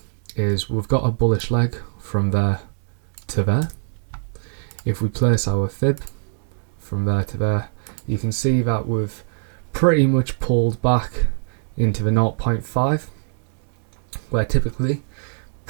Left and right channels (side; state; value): left; silent; digital silence